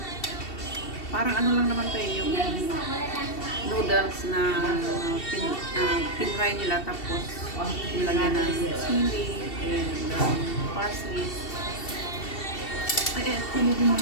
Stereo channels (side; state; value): right; late; 2.7 ms